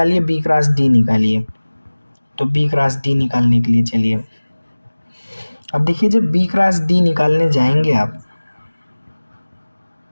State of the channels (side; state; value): both; inverted; correlation -1.00